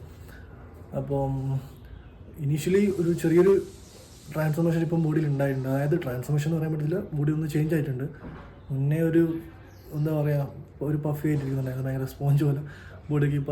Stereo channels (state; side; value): identical; both; correlation 1.00